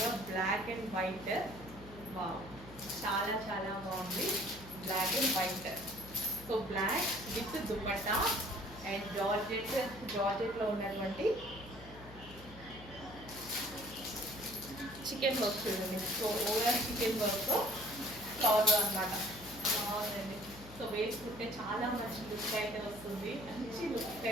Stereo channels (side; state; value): left; noise; hum, 17 dB below the sound